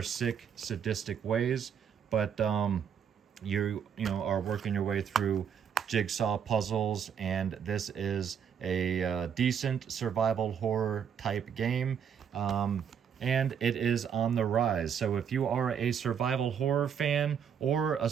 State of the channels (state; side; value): quieter; left; 7.8 dB